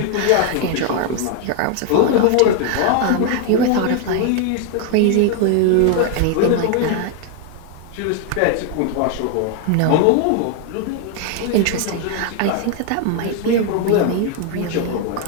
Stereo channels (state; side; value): different; both; correlation 0.00